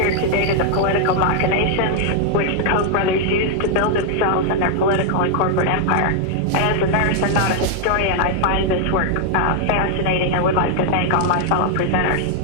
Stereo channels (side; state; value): both; different; correlation 0.00